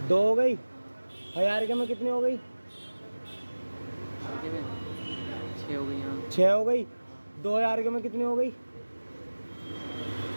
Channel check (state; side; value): inverted; both; correlation -1.00